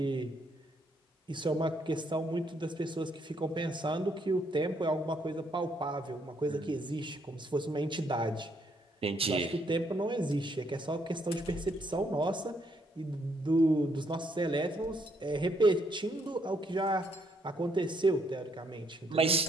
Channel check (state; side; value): normal; both; correlation 0.72